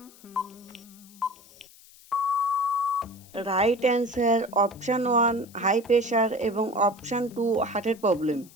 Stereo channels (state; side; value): noise; left; hiss, 24 dB below the sound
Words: Right answer option 1 high pressure এবং অপশান 2 হার্টের প্রবলেম।